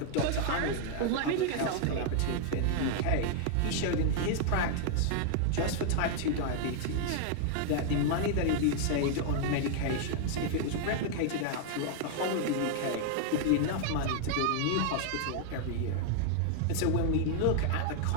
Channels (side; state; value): both; different; correlation 0.00